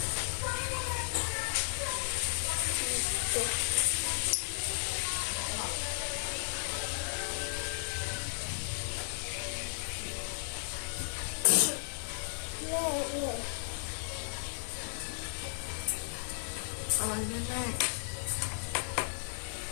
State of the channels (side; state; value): right; silent; 55 dB below the other